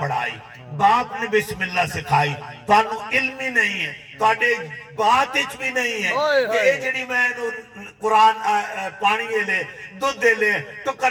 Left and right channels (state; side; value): identical; both; correlation 1.00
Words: باپ نے بسم اللہ سکھائی، تانوں علم ہی نہیں ہے، تاڑے بات اچ بھی نہیں ہے کہ اے جڑی میں قرآن پانی لے دودھ دے لے